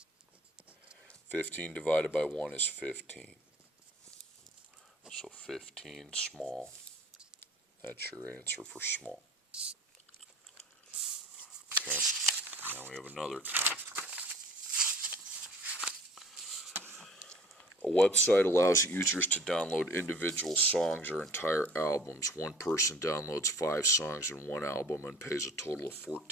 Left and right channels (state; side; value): normal; both; correlation 0.48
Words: 15 divided by 1 is 15. So 15 small. That's your answer for small. we have another column. A website allows users to download individual songs or entire albums. One person downloads 5 songs in one album and pays a total of